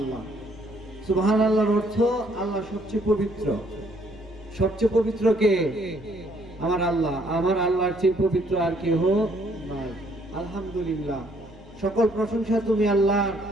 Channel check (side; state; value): both; normal; correlation 0.66